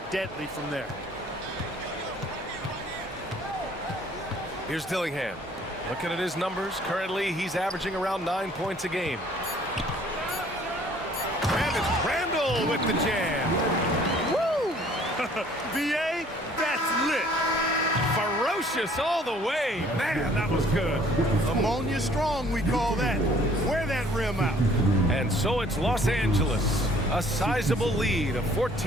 deadly from there. Here's Dillingham. Looking at his numbers, currently he's averaging around 9 points a game. And it's Randall with the jam. Woo! VA, that's lit. Ferocious all the way. Man, that was good. Ammonia strong, we call that. Wear that rim out. And so it's Los Angeles. A sizable lead of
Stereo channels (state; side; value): normal; both; correlation 0.57